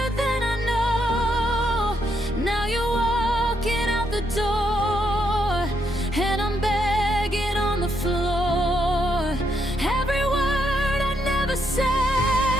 than I know. Now you're walking out the door, and I'm begging on the floor. Every word I never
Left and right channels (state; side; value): normal; both; correlation 0.77